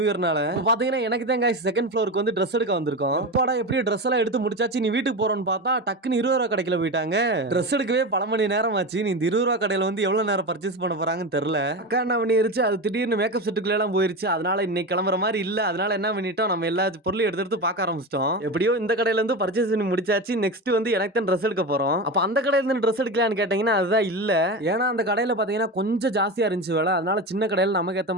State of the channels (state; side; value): normal; both; correlation 0.22